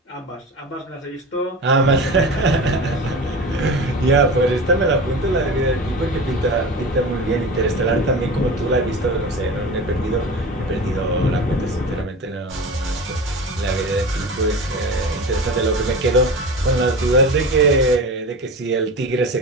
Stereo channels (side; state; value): both; normal; correlation 0.31